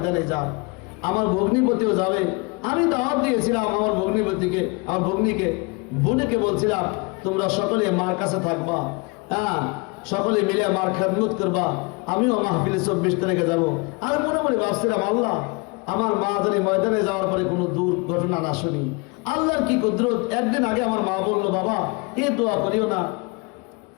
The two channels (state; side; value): quieter; right; 29.8 dB